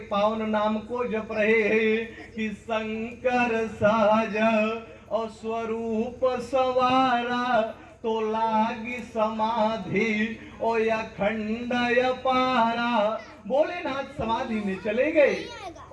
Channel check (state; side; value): identical; both; correlation 1.00